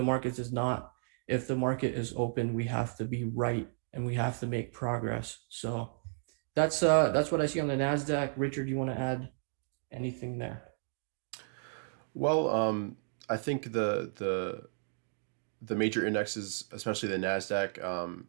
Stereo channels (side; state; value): left; silent; digital silence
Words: markets is not, if the market is open, we have to be right and we have to make progress. So that's what I see on the Nasdaq. Richard, you want to add anything there? Well, I think the major indexes, especially the Nasdaq